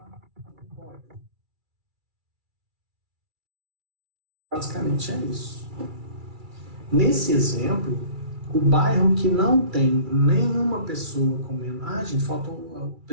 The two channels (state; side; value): late; left; 2.3 ms